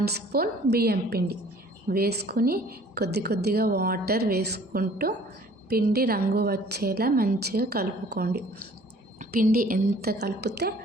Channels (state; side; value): normal; both; correlation 0.53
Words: స్పూన్ బియ్యం పిండి వేసుకుని కొద్దిగా వాటర్ వేసుకుంటూ పిండి రంగు వచ్చేలా మంచిగా కలుపుకోండి. పిండి ఎంత కలిపితే